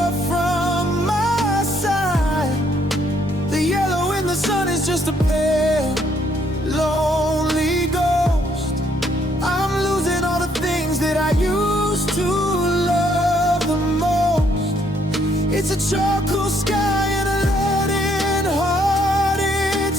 from my side. The yellow in the sun is just a pale, lonely ghost. I'm losing all the things that I used to love the most. It's a charcoal sky and a leaden-hearted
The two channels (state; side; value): normal; both; correlation 0.69